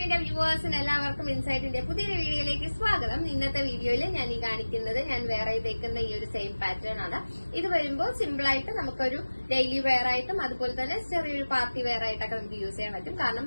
വ്യൂവേഴ്സിന് എല്ലാവർക്കും ഇൻസൈറ്റിന്റെ പുതിയൊരു വീഡിയോയിലേക്ക് സ്വാഗതം. ഇന്നത്തെ വീഡിയോയിൽ ഞാൻ ഈ കാണിക്കുന്നത് ഞാൻ വേറെ തേക്കുന്ന ഈ ഒരു സെയിം പാറ്റേൺ ആണ്. ഇത് വരുമ്പോൾ സിമ്പിൾ ആയിട്ട് നമുക്കൊരു ഡെയിലി വെയർ ആയിട്ടും അതുപോലെ തന്നെ ചെറിയൊരു പാർട്ടി വെയർ ആയിട്ടൊക്കെ നമുക്ക് യൂസ് ചെയ്യാൻ പറ്റും. കാരണം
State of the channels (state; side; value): inverted; both; correlation -1.00